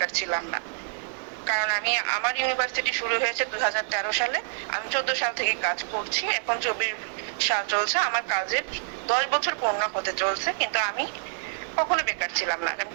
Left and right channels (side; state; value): left; silent; digital silence